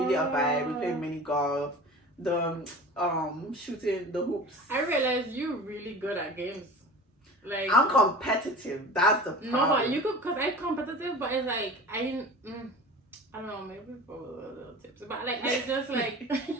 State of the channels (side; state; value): both; normal; correlation 0.37